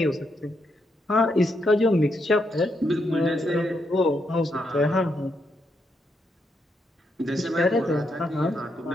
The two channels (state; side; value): normal; both; correlation 0.79